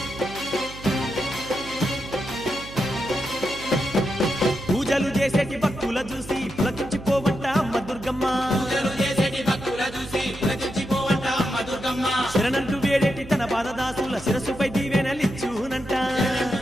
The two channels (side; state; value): right; noise; hum, 15 dB below the sound